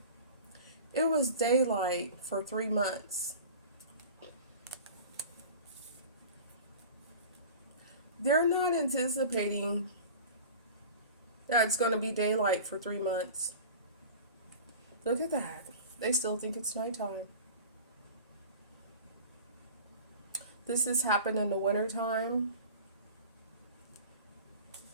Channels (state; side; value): inverted; both; correlation -0.38